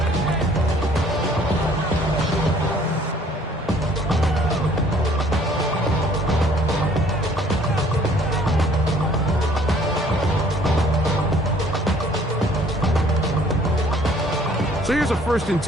So here's a 1st and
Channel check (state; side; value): normal; both; correlation 0.58